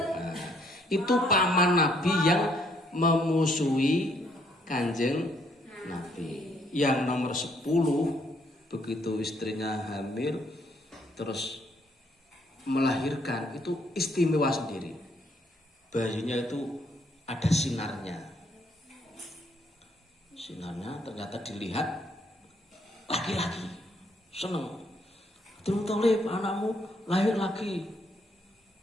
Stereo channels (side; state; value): both; normal; correlation 0.69